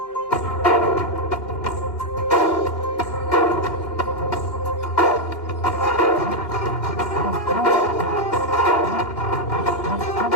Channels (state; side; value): late; right; 2.8 ms